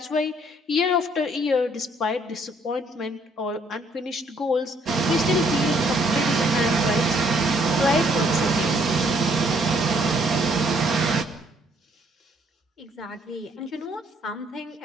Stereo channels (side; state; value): both; normal; correlation 0.66